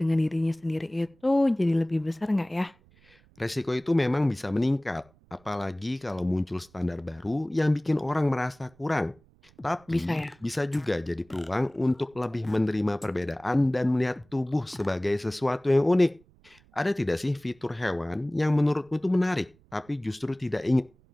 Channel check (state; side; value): noise; right; rumble, 30 dB below the sound